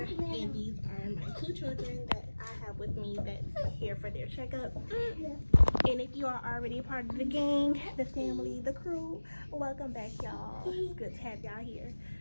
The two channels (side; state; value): both; inverted; correlation -1.00